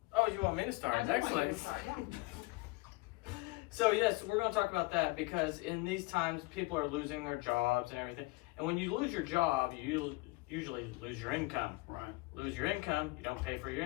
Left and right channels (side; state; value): right; quieter; 23.2 dB